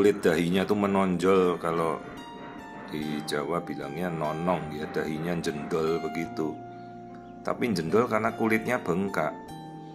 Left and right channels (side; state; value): both; identical; correlation 1.00